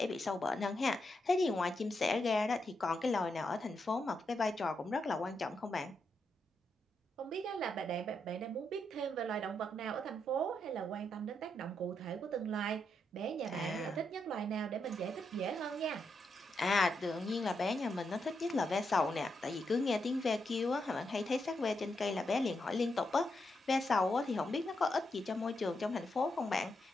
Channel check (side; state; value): both; normal; correlation 0.82